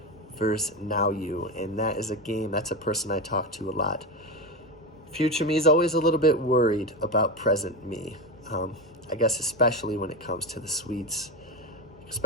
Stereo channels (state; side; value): normal; both; correlation 0.16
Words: versus now you. And that is a game, that's a person I talk to a lot. Future me is always a little bit worried about present me. I guess especially when it comes to the sweets,